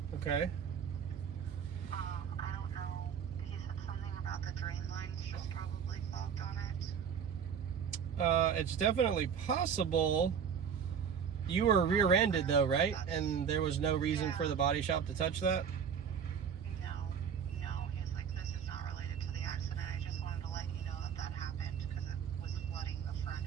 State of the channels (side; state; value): left; quieter; 7.4 dB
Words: Okay. I don't know. He said something about the drain lines just probably clogged on it. It's definitely possible. You were rear-ended though, right? And there was no reason for the body shop to touch that? No. He's like, this is not related to the accident. I just wanted to let you know that that happened because it was flooding the